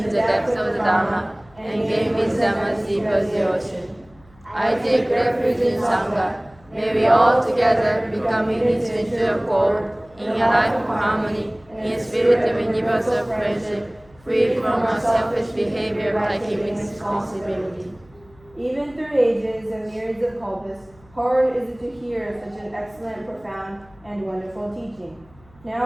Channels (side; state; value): left; noise; hum, 28 dB below the sound